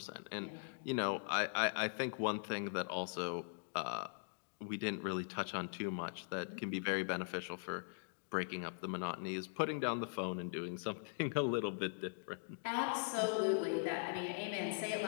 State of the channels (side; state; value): right; silent; digital silence